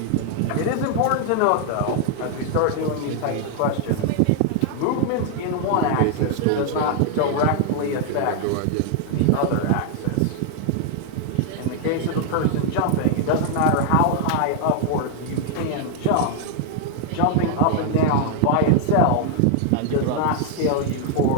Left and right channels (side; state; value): both; different; correlation 0.00